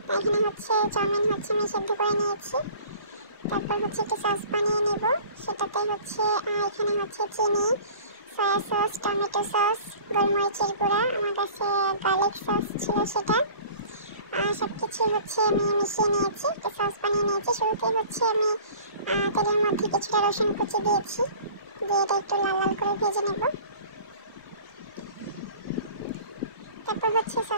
এখানে হচ্ছে চাউমিন হচ্ছে আমি সেদ্ধ করে নিয়েছি। তারপর হচ্ছে একটু সস বানিয়ে নেব, সেটাতে হচ্ছে এখানে হচ্ছে চিনি, সয়া সস, টমেটো সস, গোলমরিচের গুঁড়া, আমার কাছে গার্লিক সস ছিল সেটা, সব কিছু হচ্ছে আমি মিশিয়ে নিয়েছি, একটু সস বানিয়ে নিয়েছি। শুরুতেই হচ্ছে আমি তেলের মধ্যে কিছুটা রসুন কুচি দিয়েছি, দিয়ে এটা একটু লাল লাল করে ভেজে নেব। তারপর হচ্ছে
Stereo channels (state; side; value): inverted; both; correlation -0.45